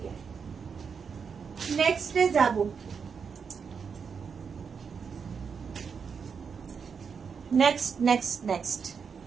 নেক্সটে যাব। নেক্সট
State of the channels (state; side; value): quieter; left; 6.2 dB